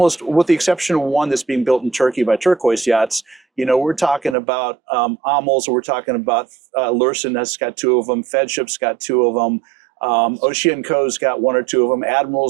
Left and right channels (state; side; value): drops out; left; at 4.4 s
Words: with the exception of one that's being built in Turkey by Turquoise Yachts, you know, we're talking about Amels, we're talking about Lursen has got 2 of them, Fedship's got 2 of them. Oceanco's got 1 or 2 of them.